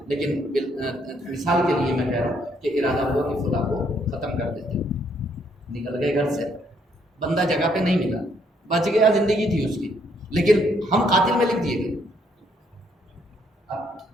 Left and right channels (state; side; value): normal; both; correlation 0.70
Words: لیکن مثال کے لیے میں کہہ رہا ہوں کہ ارادہ ہوا کہ خدا کو ختم کر دیتے، نکل گئے گھر سے، بندہ جگہ پہ نہیں ملا، بچ گیا، زندگی تھی اس کی، لیکن ہم قاتل میں لکھ دیے گئے.